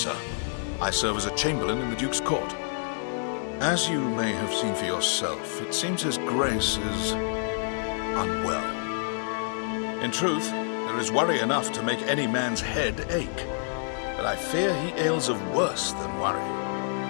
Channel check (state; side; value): silent; right; digital silence